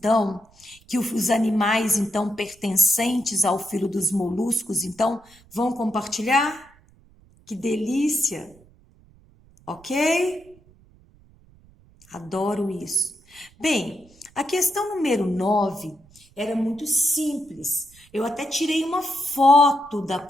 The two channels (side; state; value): right; noise; rumble, 28 dB below the sound